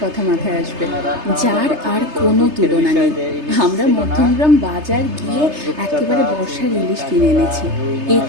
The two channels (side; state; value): left; late; 3.3 ms